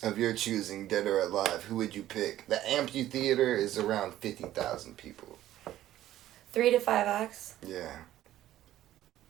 of your choosing, dead or alive, who would you pick? The amphitheater is around 50,000 people. 3 to 5 acts. Yeah.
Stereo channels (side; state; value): left; quieter; 13.5 dB